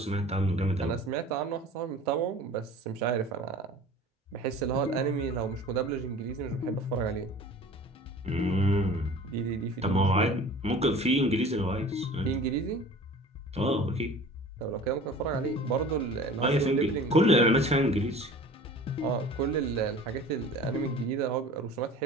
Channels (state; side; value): normal; both; correlation 0.42